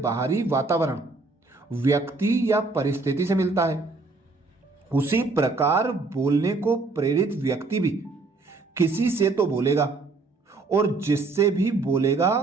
वातावरण, व्यक्ति या परिस्थिति से मिलता है। उसी प्रकार बोलने को प्रेरित व्यक्ति भी किसी से तो बोलेगा, और जिससे भी बोलेगा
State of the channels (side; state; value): left; quieter; 3.7 dB